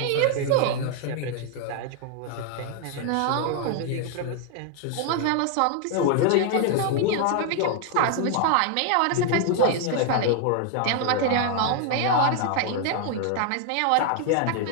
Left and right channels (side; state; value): both; different; correlation 0.00